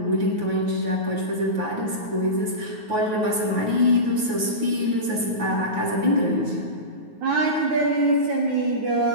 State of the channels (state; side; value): late; left; 9.4 ms